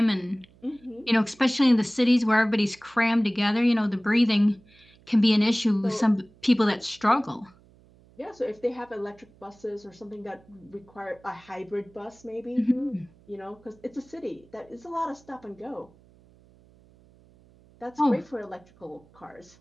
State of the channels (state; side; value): noise; right; hum, 28 dB below the sound